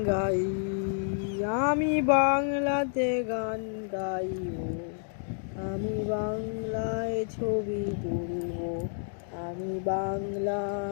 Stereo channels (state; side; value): silent; right; digital silence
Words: গাই, আমি বাংলাতে গান গাইব, আমি বাংলায় ছবি তুলব, আমি বাংলা